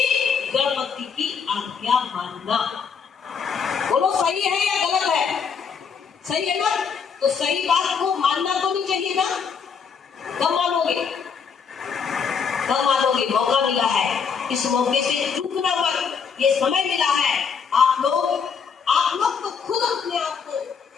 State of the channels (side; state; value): right; quieter; 6.3 dB